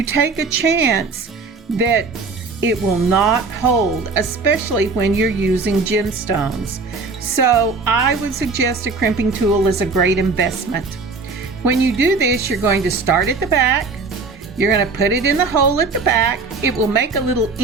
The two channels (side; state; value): left; quieter; 4.2 dB